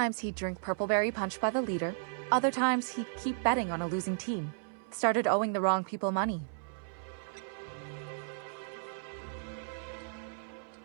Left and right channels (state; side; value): silent; left; 55 dB below the other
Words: he'd drink Purpleberry Punch by the liter. Other times he'd keep betting on a losing team. Started owing the wrong people money.